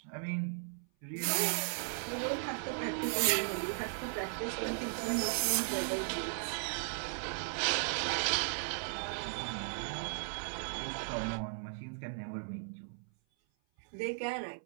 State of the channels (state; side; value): silent; left; 53 dB below the other